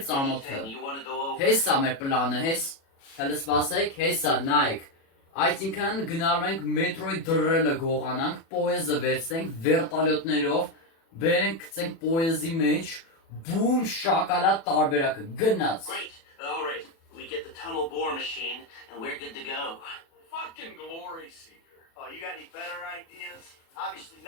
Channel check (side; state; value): right; late; 36 ms